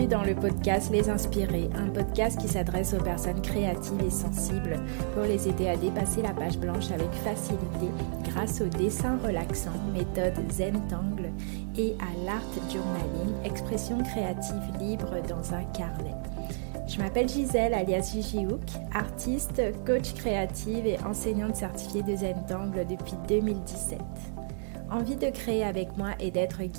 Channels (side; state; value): left; silent; digital silence